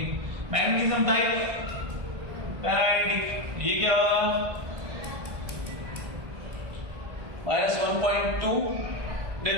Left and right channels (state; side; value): late; left; 1.5 ms